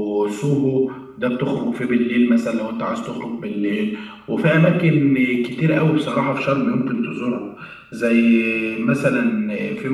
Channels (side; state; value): both; identical; correlation 1.00